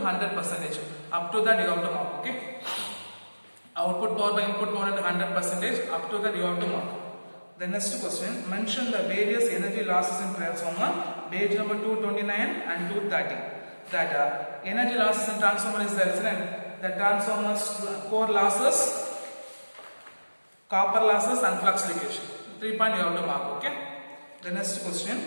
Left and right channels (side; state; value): both; inverted; correlation -1.00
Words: Up to that you have to mark. Okay. Output power by input power into 100%. Up to that you have to mark. The next question. Mention the various energy losses in transformer. Page number 229 and 230. That energy losses in transformer is there, isn't it? The transformer's core losses, copper losses and flux leakage. 3 point you have to mark. Okay. The next question.